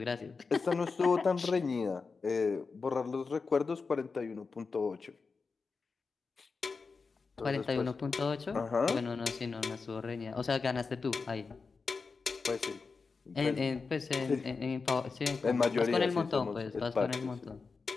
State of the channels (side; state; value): right; quieter; 4.6 dB